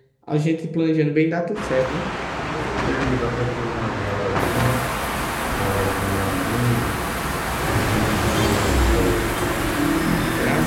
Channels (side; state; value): both; identical; correlation 1.00